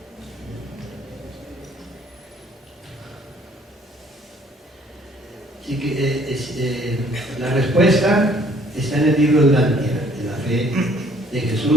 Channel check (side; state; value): both; normal; correlation 0.60